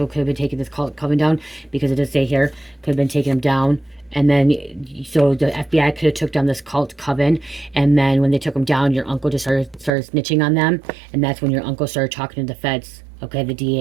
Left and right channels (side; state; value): left; drops out; at 9.9 s